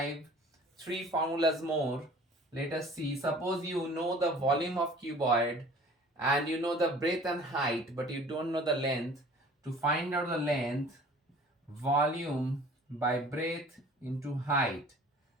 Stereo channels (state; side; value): normal; both; correlation 0.48